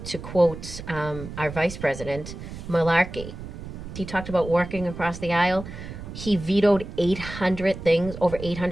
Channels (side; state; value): right; noise; rumble, 11 dB below the sound